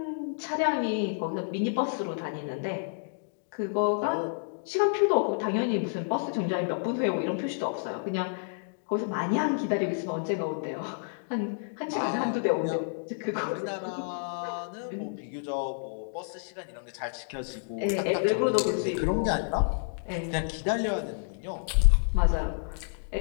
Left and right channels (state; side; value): silent; right; digital silence